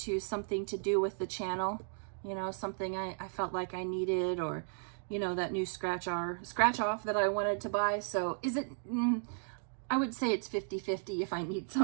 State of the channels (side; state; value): left; silent; digital silence